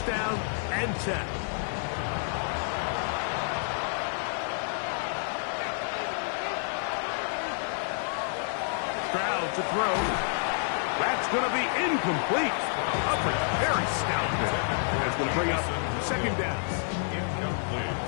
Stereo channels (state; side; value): silent; right; digital silence